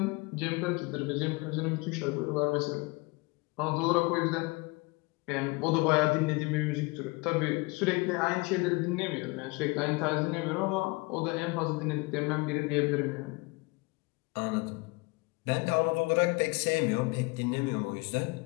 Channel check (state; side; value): quieter; right; 26.1 dB